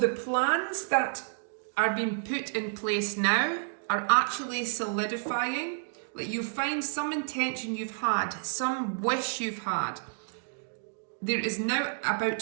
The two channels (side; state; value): left; silent; digital silence